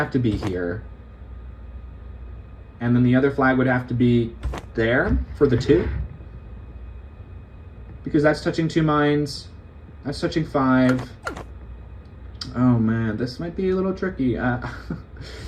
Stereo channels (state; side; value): identical; both; correlation 1.00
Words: to be here. And then the other flag would have to be there for the 2. Because that's touching 2 mines. That's touching 5. Oh man, this might be a little tricky.